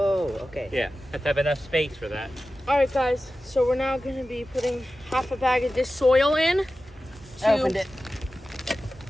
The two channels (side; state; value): both; normal; correlation 0.94